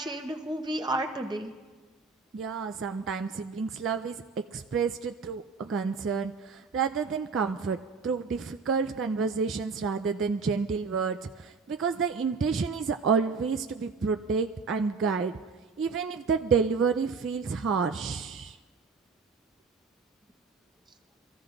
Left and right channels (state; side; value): quieter; left; 4.9 dB